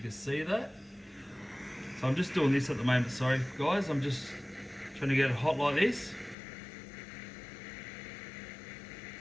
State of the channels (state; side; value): drops out; right; at 6.4 s